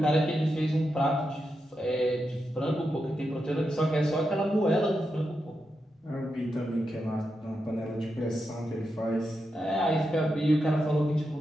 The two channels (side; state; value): both; normal; correlation 0.87